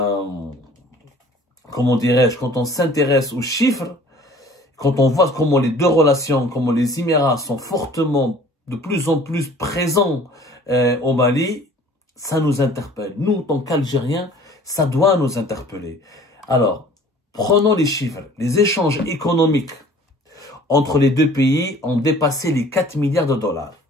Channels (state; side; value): normal; both; correlation 0.50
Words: dirais-je, quand on s'intéresse aux chiffres, quand on voit comment les deux relations, comment les Émirats sont fortement, de plus en plus présents au Mali, ça nous interpelle. Nous, en tant qu'Algériens, ça doit nous interpeller. Alors, prenons les chiffres. Les échanges économiques entre les deux pays ont dépassé les 4 milliards de dollars.